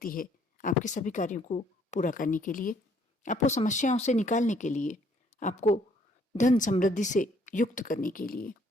है आपके सभी कार्यों को पूरा करने के लिए, आपको समस्याओं से निकालने के लिए, आपको धन समृद्धि से युक्त करने के लिए।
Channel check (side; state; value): both; normal; correlation 0.64